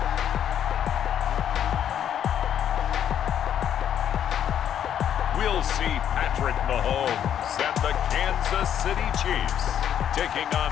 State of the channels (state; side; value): quieter; right; 9.7 dB